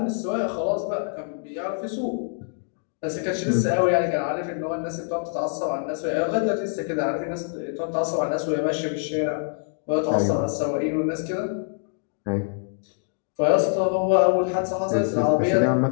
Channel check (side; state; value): right; silent; digital silence